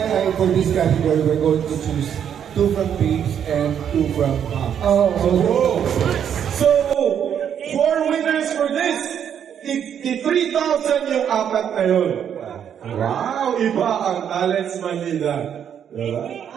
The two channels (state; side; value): quieter; left; 8.7 dB